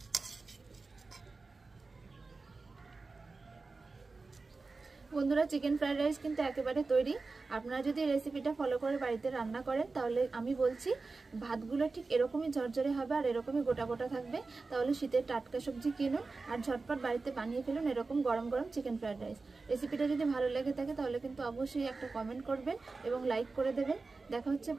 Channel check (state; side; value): quieter; left; 3.9 dB